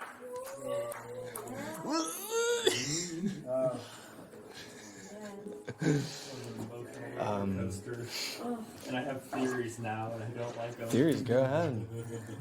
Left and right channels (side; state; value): both; identical; correlation 1.00